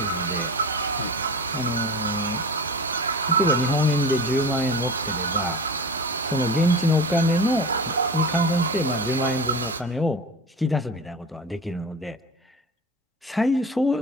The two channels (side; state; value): both; normal; correlation 0.32